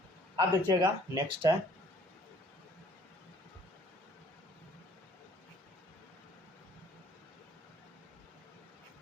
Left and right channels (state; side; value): normal; both; correlation 0.57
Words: अब देखिएगा नेक्स्ट है